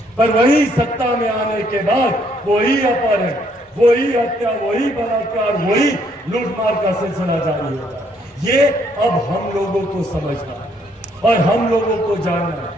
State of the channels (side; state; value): both; normal; correlation 0.69